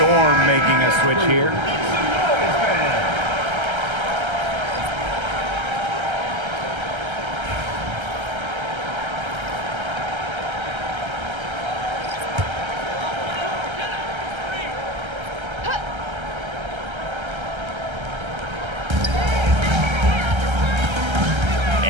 making a switch here.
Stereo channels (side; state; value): left; late; 1.3 ms